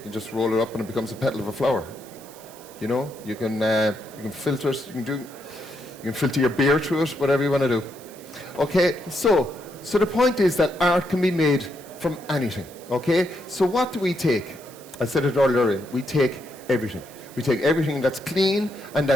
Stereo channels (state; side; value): noise; right; hiss, 21 dB below the sound